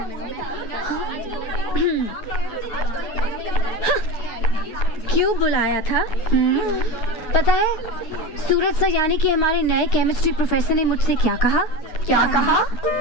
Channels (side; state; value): right; late; 9.7 ms